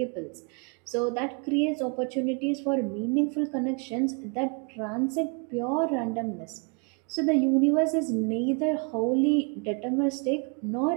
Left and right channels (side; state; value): left; quieter; 35.7 dB